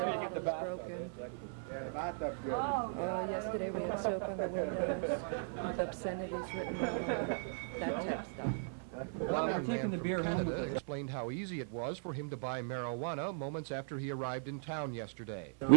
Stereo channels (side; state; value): left; silent; 52 dB below the other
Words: bottles broken. Yesterday we had soap on the windows with obscenities written all over, that type of stuff. One young man from Canada explained how easy it was for him to buy marijuana moments after he arrived in town yesterday.